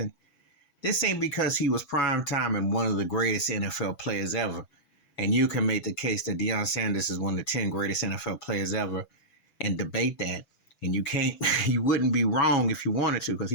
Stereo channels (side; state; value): right; late; 6.1 ms